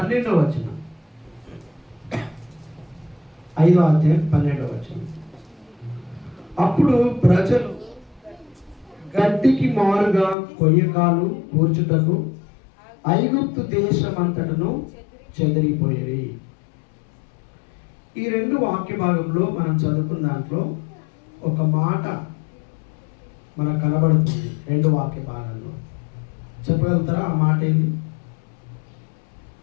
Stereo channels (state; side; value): drops out; right; at 10.4 s